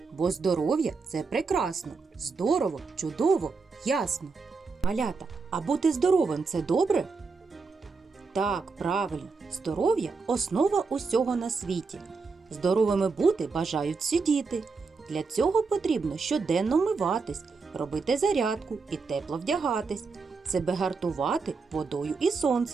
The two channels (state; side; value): quieter; left; 4.6 dB